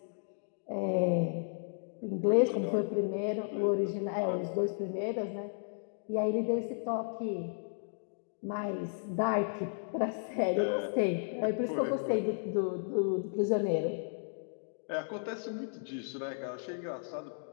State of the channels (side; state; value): right; silent; digital silence